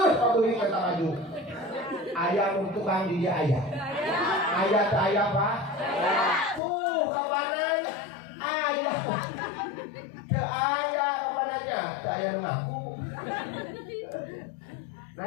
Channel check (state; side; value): drops out; right; at 6.6 s